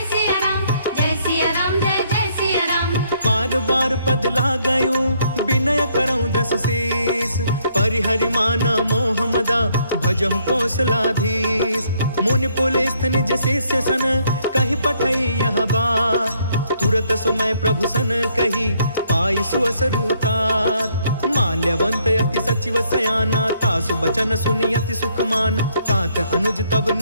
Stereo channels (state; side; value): inverted; both; correlation -0.69